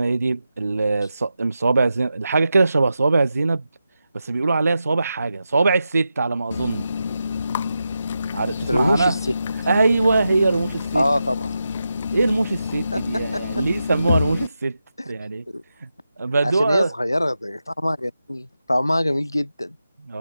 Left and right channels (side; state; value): both; inverted; correlation -0.89